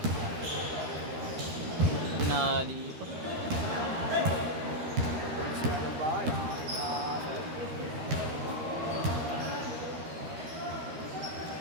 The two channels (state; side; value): late; left; 13 ms